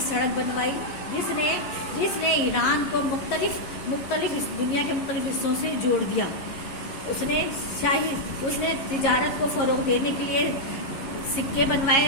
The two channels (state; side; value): late; right; 11 ms